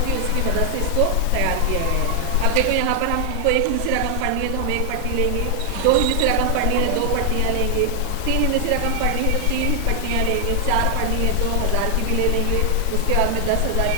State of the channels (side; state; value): both; different; correlation 0.00